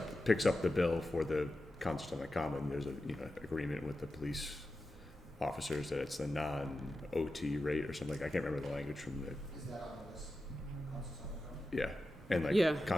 picks up the bill for the concerts on the common. There's a agreement with the police officers that it's the non-OT rate or something. I can't remember the language from the Is that on the list? Concerts on the common? yeah, and like Yeah, I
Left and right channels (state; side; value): normal; both; correlation 0.92